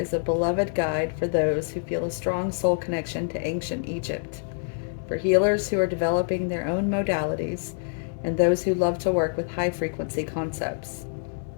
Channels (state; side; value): silent; right; digital silence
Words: is a beloved guide for those who feel a strong soul connection to ancient Egypt, for healers who are developing their own modalities, and those who love to work with high-frequency concepts.